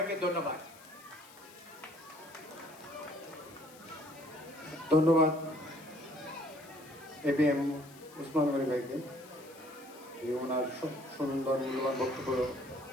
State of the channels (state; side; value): noise; left; hiss, 21 dB below the sound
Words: ধন্যবাদ। ধন্যবাদ ABM ওসমান গনি ভাইকে ওনার সুন্দর মূল্যবান বক্তব্য